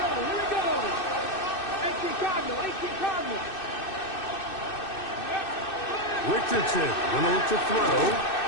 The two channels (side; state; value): right; late; 2.6 ms